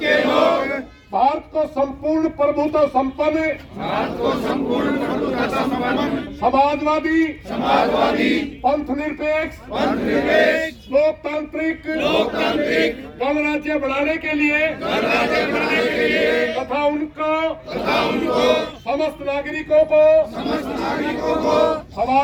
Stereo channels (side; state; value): both; identical; correlation 1.00